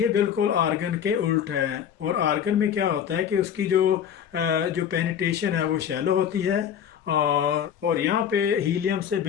बिल्कुल आर्गन के उल्ट है। और आर्गन में क्या होता है कि उसकी जो पेनिट्रेशन है वो शैलो होती है, और यहाँ पे हीलियम से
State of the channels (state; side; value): quieter; right; 8.8 dB